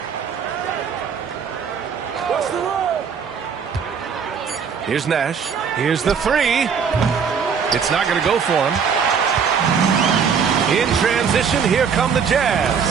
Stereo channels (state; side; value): quieter; left; 6.6 dB